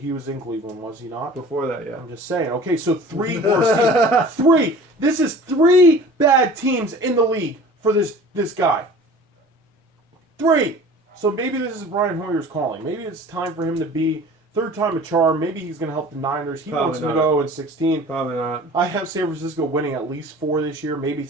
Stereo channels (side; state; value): both; normal; correlation 0.43